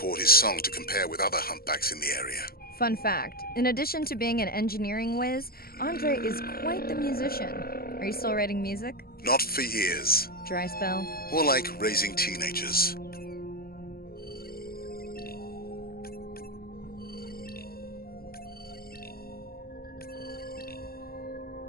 his song to compare with other humpbacks in the area. Fun fact, in addition to being an engineering whiz, Andre is quite the musician. Are you still writing music? Not for years. Dry spell? More like raising teenagers.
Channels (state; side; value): late; right; 0.44 ms